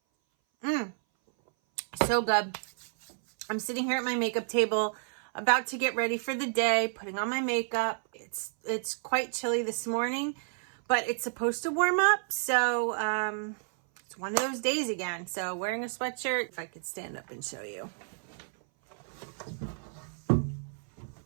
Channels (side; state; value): left; silent; 57 dB below the other